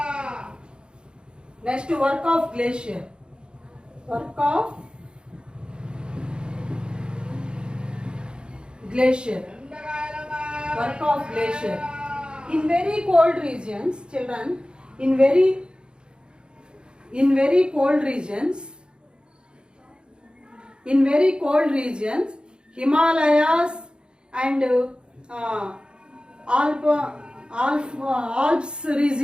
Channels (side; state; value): left; late; 0.051 ms